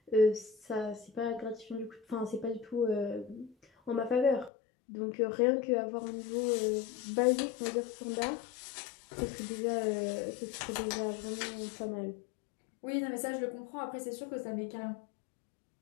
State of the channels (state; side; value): drops out; right; at 4.5 s